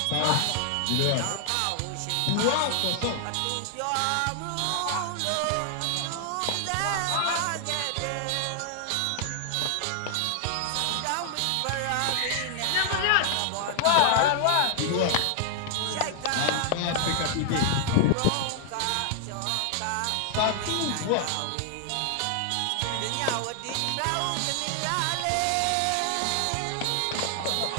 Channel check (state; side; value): different; both; correlation 0.00